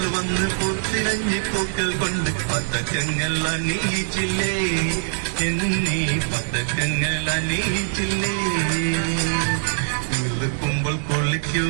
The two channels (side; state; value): left; silent; 64 dB below the other